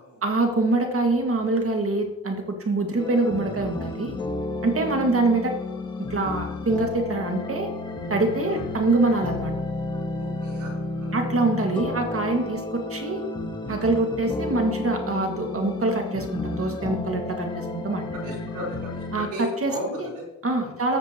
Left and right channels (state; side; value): normal; both; correlation 0.42